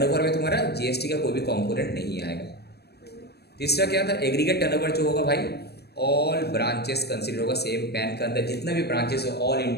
में तुम्हारा जीएसटी का कोई भी कंपोनेंट नहीं आएगा। तीसरा क्या था? एग्रीगेट टर्नओवर जो होगा भाई, ऑल ब्रांचेस कंसिडर होगा, सेम पैन के अंदर जितना भी ब्रांचेस हो ऑल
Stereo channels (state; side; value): late; right; 0.47 ms